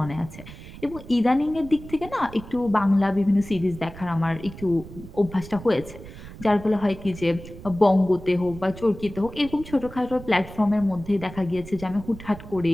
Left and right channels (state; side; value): noise; right; rumble, 15 dB below the sound